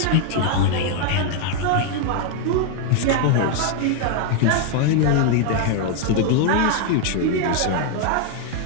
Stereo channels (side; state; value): both; different; correlation 0.01